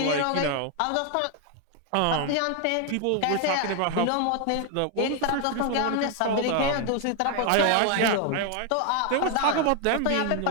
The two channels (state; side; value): different; both; correlation 0.01